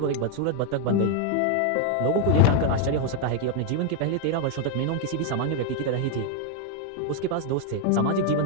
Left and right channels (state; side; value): different; both; correlation 0.00